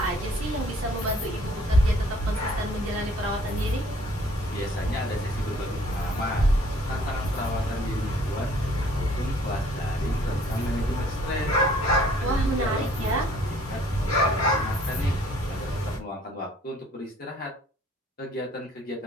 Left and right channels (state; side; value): normal; both; correlation 0.58